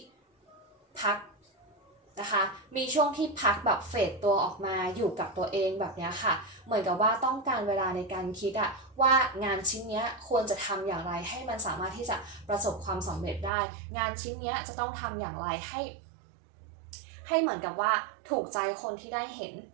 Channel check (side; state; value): left; drops out; at 13.5 s